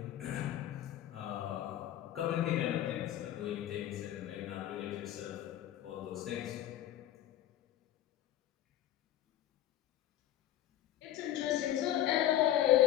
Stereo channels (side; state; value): right; quieter; 12.7 dB